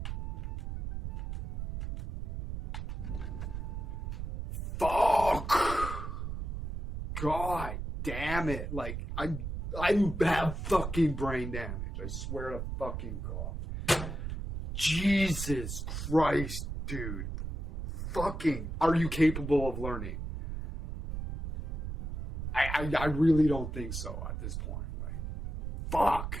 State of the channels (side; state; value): right; noise; rumble, 5 dB below the sound